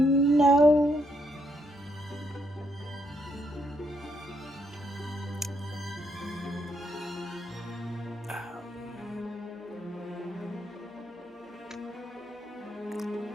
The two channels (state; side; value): normal; both; correlation 0.75